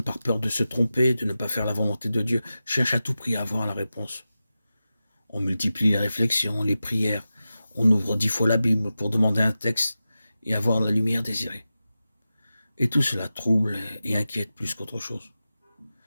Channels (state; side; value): inverted; both; correlation -0.94